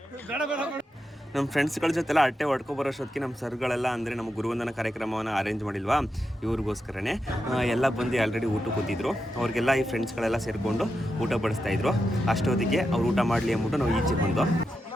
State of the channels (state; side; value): normal; both; correlation 0.87